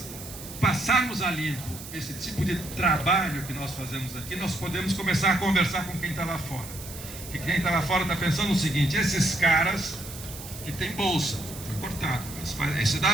passarmos a limpo esse tipo de trabalho que nós fazemos aqui, nós podemos começar a conversar com quem está lá fora, que quem está lá fora está pensando o seguinte: esses caras que tem bolsa, foi cortado, esse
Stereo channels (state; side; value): noise; right; hiss, 13 dB below the sound